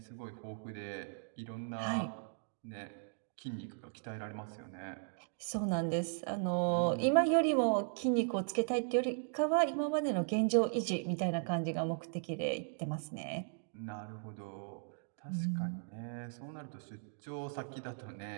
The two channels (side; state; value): left; silent; digital silence